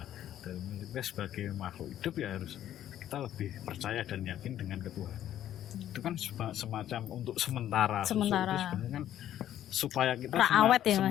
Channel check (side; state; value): right; quieter; 11.6 dB